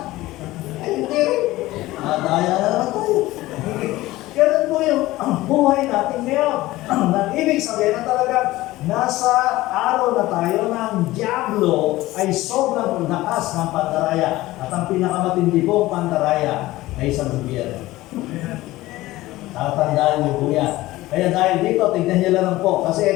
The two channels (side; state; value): right; quieter; 17.7 dB